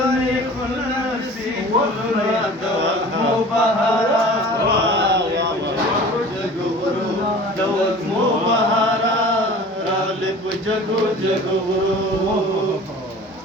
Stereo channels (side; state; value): both; normal; correlation 0.42